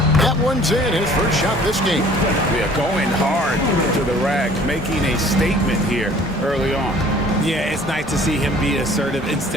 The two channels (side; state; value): both; normal; correlation 0.52